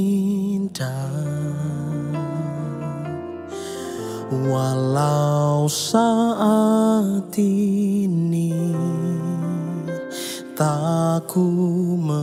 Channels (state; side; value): identical; both; correlation 1.00